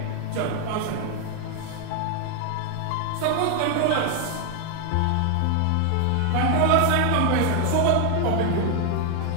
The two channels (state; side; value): different; both; correlation 0.00